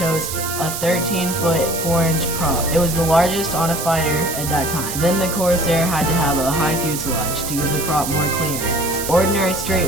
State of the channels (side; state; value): right; noise; hiss, 5 dB below the sound